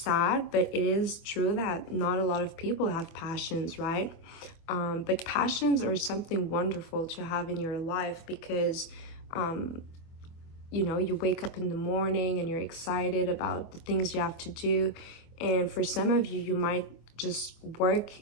but it is true that not a lot of people have passions, right? But passions are something wonderful to have in your life, because you know, you wake up in the morning and you're excited about the things you have to do. And for some of you, you might just work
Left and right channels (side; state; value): right; late; 24 ms